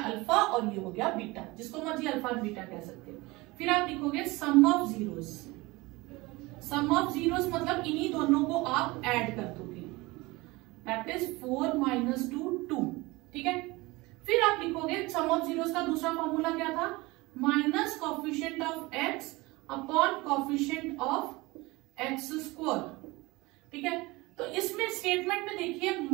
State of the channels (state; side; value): quieter; left; 22.3 dB